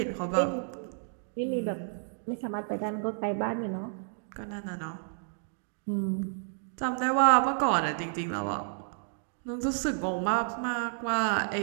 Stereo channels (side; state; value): left; silent; digital silence